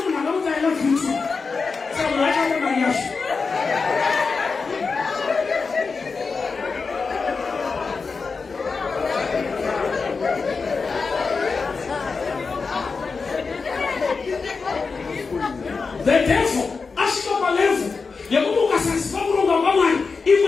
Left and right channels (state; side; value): quieter; right; 4.7 dB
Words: The devil, ashika level, yakubuka sasa kurunga mama